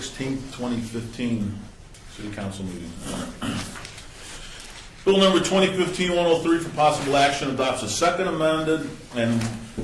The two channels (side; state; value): both; identical; correlation 1.00